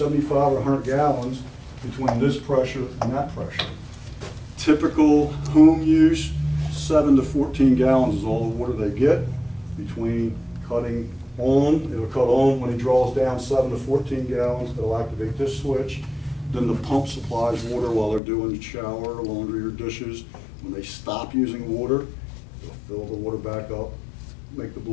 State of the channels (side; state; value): right; drops out; at 18.2 s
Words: or 100 gallons between this pressure and that pressure. Typical home use, 7 to 14 gallons is all the water they get between cutting on. It'll cut on when he draws down 7 to 14 gallons. It'll activate this switch. Then the pump supplies water while they're doing the shower, laundry, or dishes. When they stop using water, they'll fill the water back up, make the